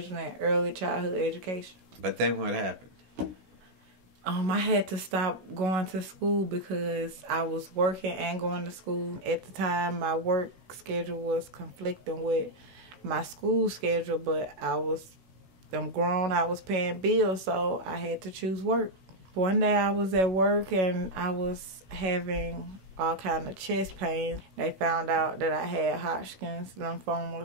in early childhood education. But then what happened? I had to stop going to school because I was working and going to school. At the time, my work schedule was conflicting with my school schedule, but I'm grown, I was paying bills, so I had to choose work. One day I was at work and I was having all kind of chest pains. They found out that I had Hodgkin's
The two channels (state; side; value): late; left; 16 ms